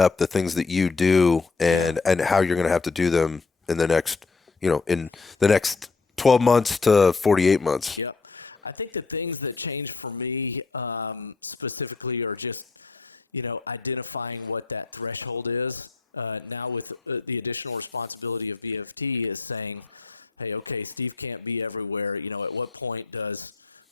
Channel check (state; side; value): quieter; right; 4.3 dB